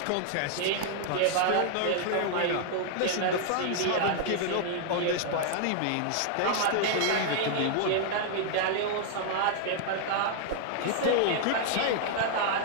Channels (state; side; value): different; both; correlation -0.01